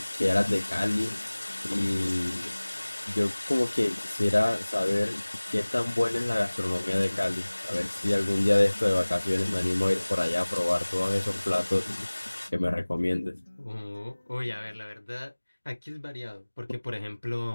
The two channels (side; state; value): both; inverted; correlation -1.00